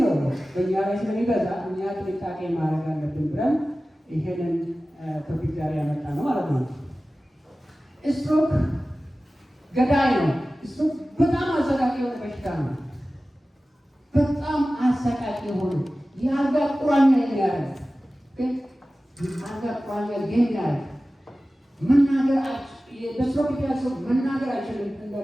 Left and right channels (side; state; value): both; normal; correlation 0.96